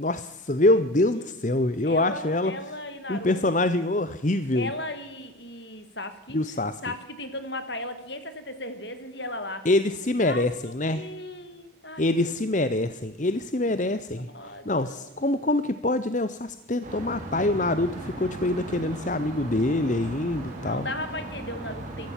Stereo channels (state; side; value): normal; both; correlation 0.36